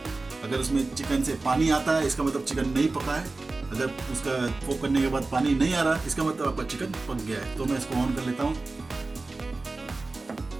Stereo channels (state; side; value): quieter; left; 3.4 dB